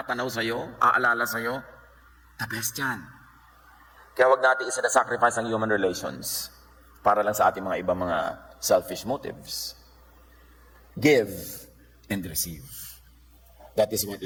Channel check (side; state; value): both; identical; correlation 1.00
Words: sa'yo, aalala sa'yo, the best yan. Kaya wag natin isa-sacrifice ang human relations para lang sa ating mga ibang mga selfish motives. Give and receive. That is what